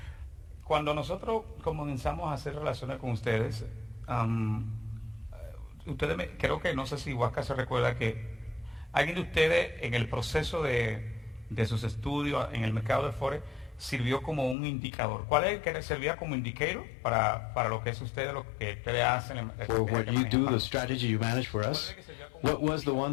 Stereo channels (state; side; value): drops out; right; at 14.6 s